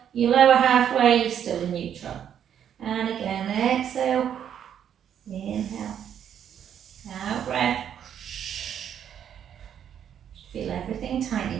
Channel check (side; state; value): left; quieter; 9.2 dB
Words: you lower halfway, you're still in neutral. And again, exhale, inhale, out breath. Feel everything